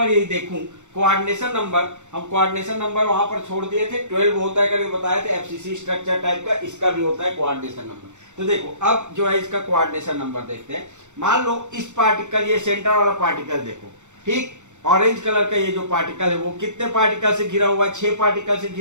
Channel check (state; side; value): late; left; 0.84 ms